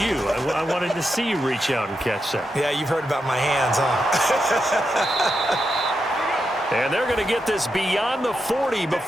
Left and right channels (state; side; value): normal; both; correlation 0.86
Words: I wanted to see you reach out and catch that. Yeah, you've heard about my hands, huh? And they're going to get this beyond the 40